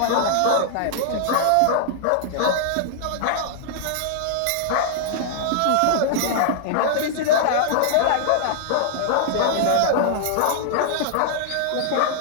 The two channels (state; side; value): different; both; correlation -0.01